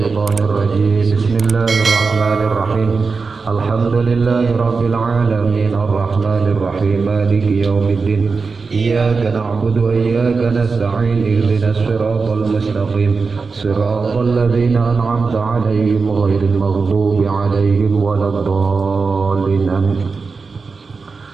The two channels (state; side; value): quieter; left; 4.6 dB